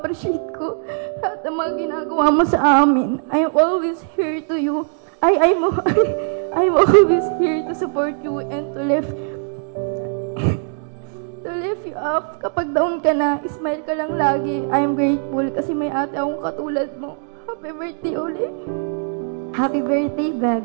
ko lahat ng mga ginagawa mo sa amin. I'm always here to you. I'm always here to support you and to lift you up. Kapag down ka na, smile ka lang lagi. I'm grateful kasi may ate akong katulad mo. Happy birthday ulit. Happy birthday,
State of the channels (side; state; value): left; silent; 58 dB below the other